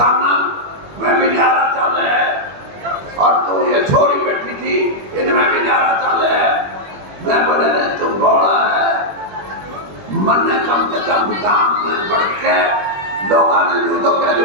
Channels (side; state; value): left; late; 21 ms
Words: मैं भी न्यारा चल है, और तू ये छोरी बैठी थी इनमें भी न्यारा चल है। मैं बोले रे तू बड़ा है, मन ने कम से कम काम में बढ़ के लोगों ने यूं तो कह